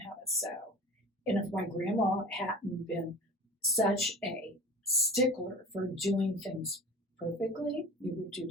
how to sew. And if my grandma hadn't been such a stickler for doing things perfectly, you would do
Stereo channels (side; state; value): both; normal; correlation 0.38